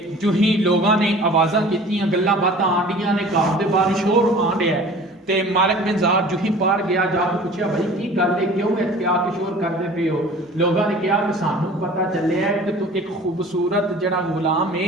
جو ہی لوگاں نے آوازاں کیتیاں گلاں باتاں آنڈیاں نے گھر دے باہر شور آن رہا ہے تے مالک بن زار جو ہی باہر گیا جا کے پوچھا بھائی کی گل ہے کیوں اتنے آ کے شور کرتے پے ہو؟ لوگاں نے کہا کہ سانو پتہ چلیا ہے کہ تو ایک خوبصورت جڑا غلام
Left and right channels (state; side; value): normal; both; correlation 0.44